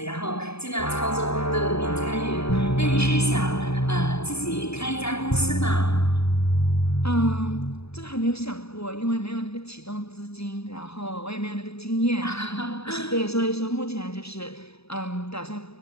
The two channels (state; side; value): late; right; 0.78 ms